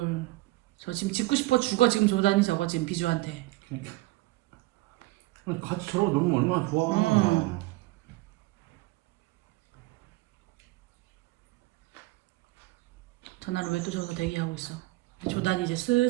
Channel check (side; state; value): left; quieter; 20.0 dB